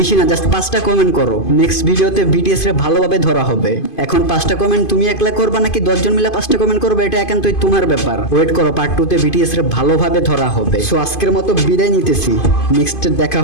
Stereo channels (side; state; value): right; late; 2.5 ms